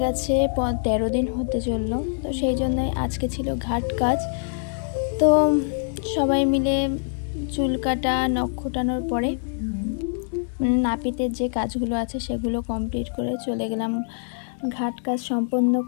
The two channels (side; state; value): right; silent; 62 dB below the other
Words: গেছে 13 দিন হতে চললো। তো সেই জন্যই আজকে ছিল ঘাট কাজ। তো সবাই মিলে চুল কাটা, নখ খোটানোর পরে নাপিতের যে কাজগুলো আছে সেগুলো কমপ্লিট করে চলে গেলাম ঘাট কাজ সম্পন্ন